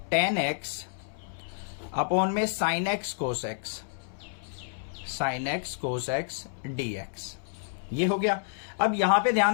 अपॉन में sin x cos x, sin x cos x dx। ये हो गया। अब यहां पे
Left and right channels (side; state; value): right; silent; 58 dB below the other